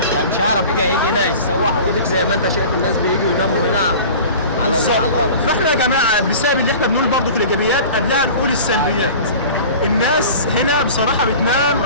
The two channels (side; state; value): both; inverted; correlation -0.39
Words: هيعرف يجي هنا يتسوح. وديك زي ما انت شايف الناس بييجوا يناموا هنا على الارض. فاحنا يا جماعه بسبب اللي احنا بنقول برضه في الايجابيات قبلها نقول السلبيات. الناس هنا بصراحه بتنام